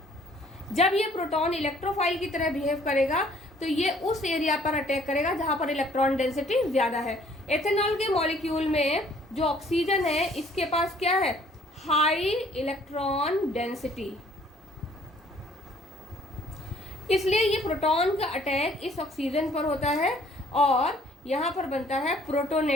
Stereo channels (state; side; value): normal; both; correlation 0.59